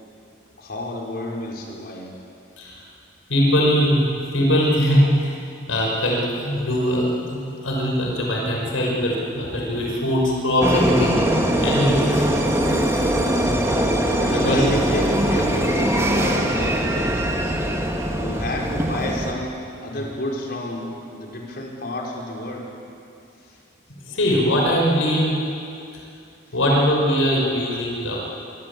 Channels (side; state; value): both; normal; correlation 0.56